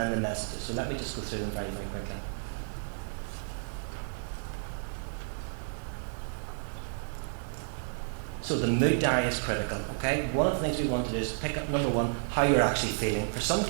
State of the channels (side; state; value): left; silent; 57 dB below the other